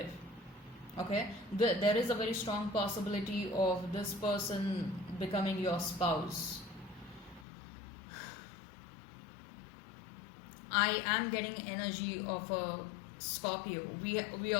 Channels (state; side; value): drops out; right; at 7.5 s